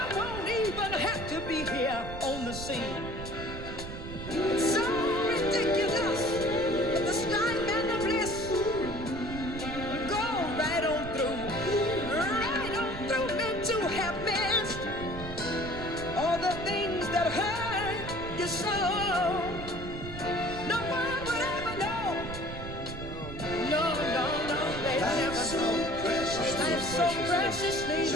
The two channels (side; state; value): right; noise; rumble, 9 dB below the sound